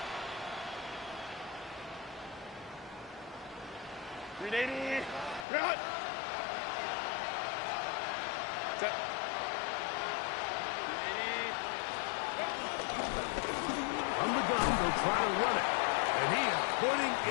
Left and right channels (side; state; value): right; drops out; at 5.5 s